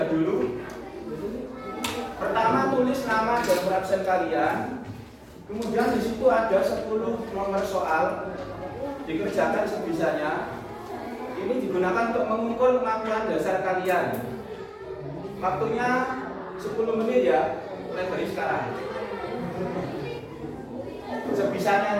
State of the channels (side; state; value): both; identical; correlation 1.00